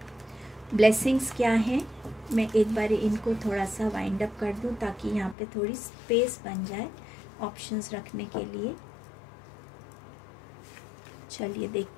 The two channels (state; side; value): drops out; right; at 5.4 s